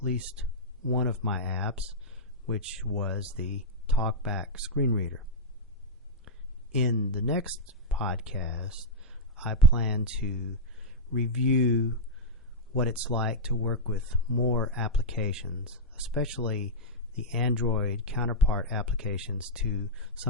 least one of my apps, which was the TalkBack screen reader. In the next podcast, I plan to review what it's like to work with more applications, especially the Android counterpart applications to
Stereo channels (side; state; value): both; normal; correlation -0.05